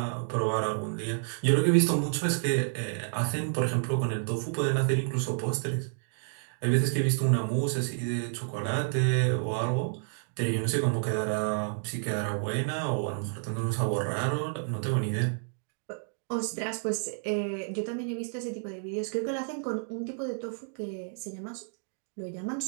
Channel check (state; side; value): silent; left; digital silence